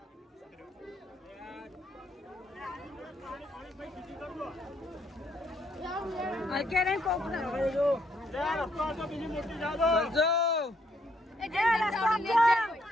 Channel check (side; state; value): both; normal; correlation 0.72